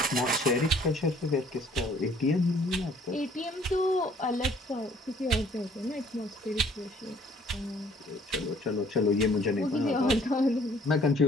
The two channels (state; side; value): normal; both; correlation 0.58